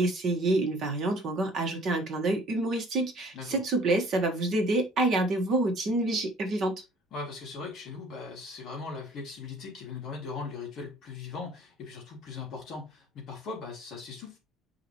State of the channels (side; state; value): both; normal; correlation 0.53